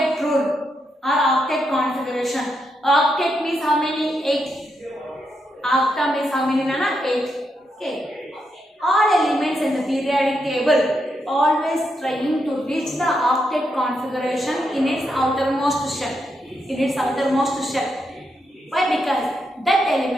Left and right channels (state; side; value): normal; both; correlation 0.82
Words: rule or octet configuration. Octet means how many? 8. Octa means how many, Nana? 8. Okay. All elements in the periodic table always trying to reach the octet configuration in its outermost shell. In its outermost shell. Why? Because that